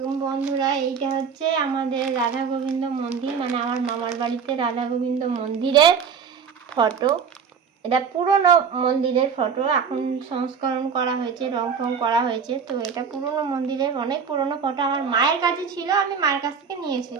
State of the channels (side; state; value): left; quieter; 6.3 dB